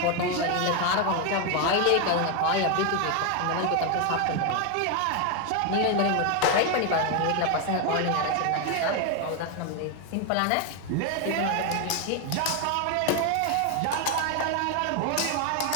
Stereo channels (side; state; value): both; different; correlation 0.01